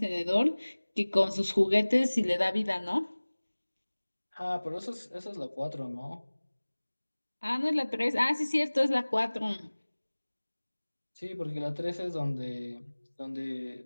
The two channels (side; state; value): both; inverted; correlation -1.00